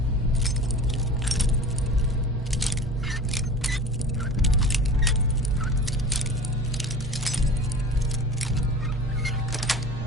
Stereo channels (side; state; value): both; normal; correlation 0.37